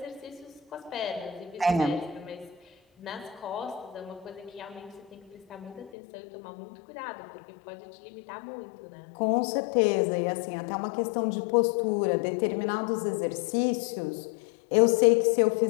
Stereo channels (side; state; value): right; drops out; at 5.9 s